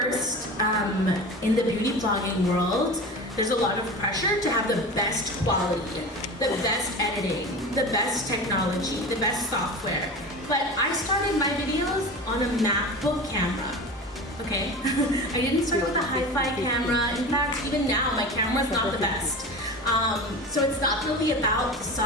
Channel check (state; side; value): normal; both; correlation 0.31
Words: in the beauty vlogging world, there's a lot of pressure to have the best quality, the best editing, the best technology, the best software. But I started my videos on a MacBook camera, okay? I didn't start with a hi-fi camera. In fact, even now, my camera's not the best. So it's not really about the